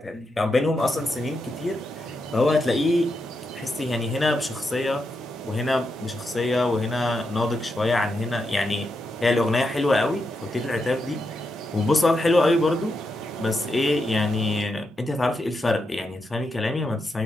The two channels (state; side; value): normal; both; correlation 0.84